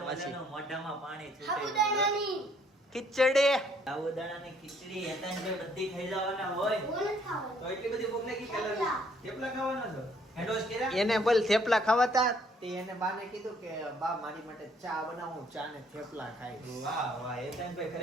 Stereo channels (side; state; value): both; normal; correlation 0.64